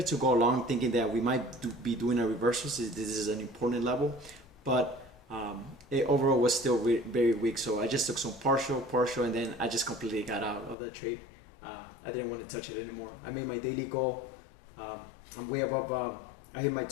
to go long, thinking that we might be doing a reversal. So this is an important level, but it overall was still very weak. So I just took some partial, and then I just completely got out of the trade. I didn't want to touch it anymore. I made my daily goal. I'm way above. I hit my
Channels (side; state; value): right; drops out; at 10.8 s